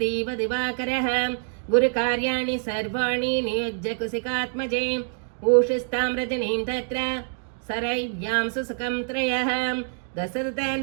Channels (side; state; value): left; silent; 61 dB below the other